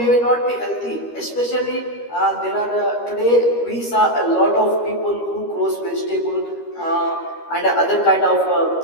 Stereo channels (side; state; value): right; late; 13 ms